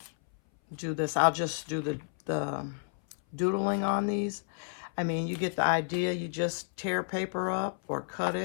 do this. I'll just do the doodling on these. I mean, you get the idea. You just tear paper up or cut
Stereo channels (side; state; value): right; silent; 57 dB below the other